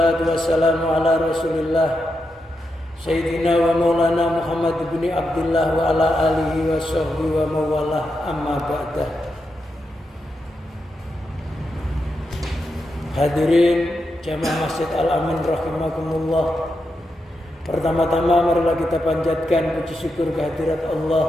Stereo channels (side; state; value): both; normal; correlation 0.86